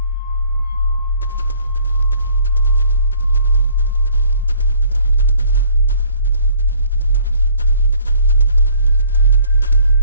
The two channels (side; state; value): both; inverted; correlation -0.58